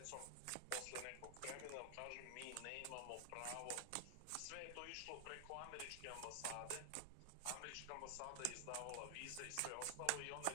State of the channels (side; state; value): both; different; correlation 0.00